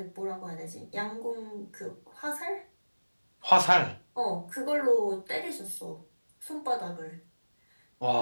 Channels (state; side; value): inverted; both; correlation -1.00